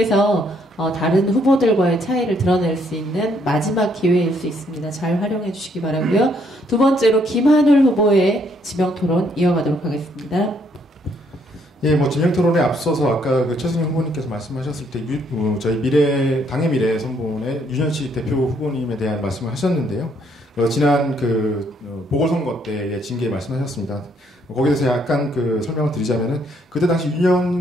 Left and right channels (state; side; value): normal; both; correlation 0.69